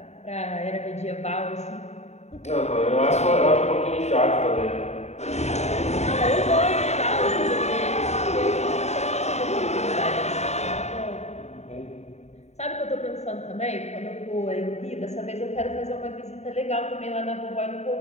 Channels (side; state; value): right; late; 0.32 ms